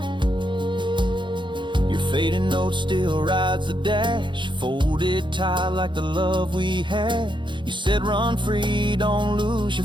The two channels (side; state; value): left; late; 0.23 ms